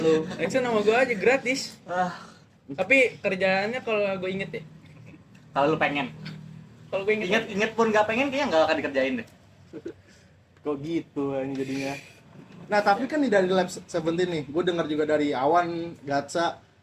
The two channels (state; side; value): identical; both; correlation 1.00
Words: Action sama gua aja gratis. Ah, Tapi kerjaannya kalau gua inget ya. kalau lu pengen. Kalau gua inget. Inget pun nggak pengen kayaknya nggak akan dikerjain deh. Kok gitu ini jadinya. Nah, tapi kan nih dari Lab 17 nih, gue dengar juga dari Awan, Gatsa,